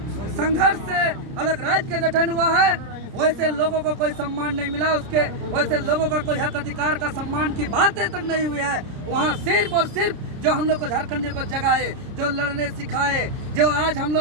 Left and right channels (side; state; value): left; late; 30 ms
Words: संघर्ष से अलग राज्य का गठन हुआ है, वैसे लोगों को कोई सम्मान नहीं मिला, उसके वैसे लोगों का कोई हक अधिकार का सम्मान की बातें तक नहीं हुई है। वहाँ सिर्फ और सिर्फ जो हम लोग को झारखंडियों को जगाए, जो लड़ने सिखाए, जो आज हम